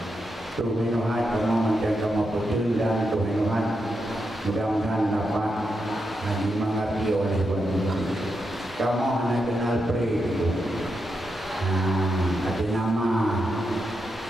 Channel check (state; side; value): normal; both; correlation 0.85